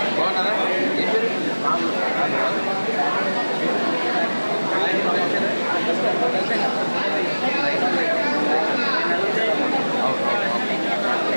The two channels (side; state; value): both; inverted; correlation -1.00